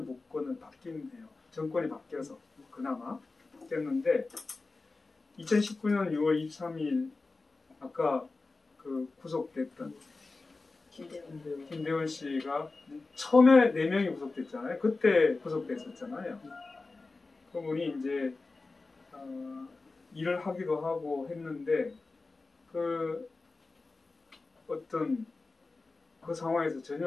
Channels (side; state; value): right; quieter; 3.7 dB